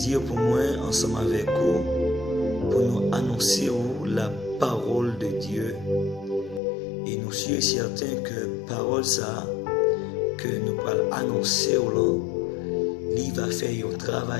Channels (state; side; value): drops out; right; at 6.6 s